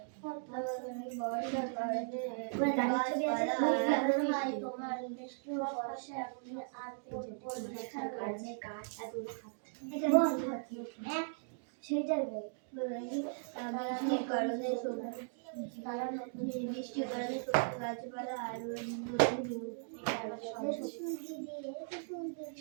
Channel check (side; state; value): left; silent; digital silence